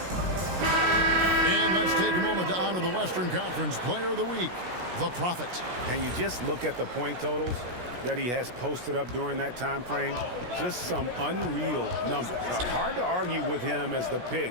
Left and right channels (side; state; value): left; late; 17 ms